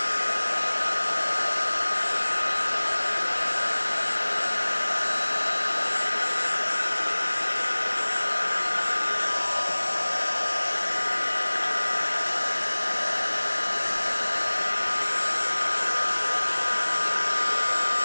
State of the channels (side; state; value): both; inverted; correlation -1.00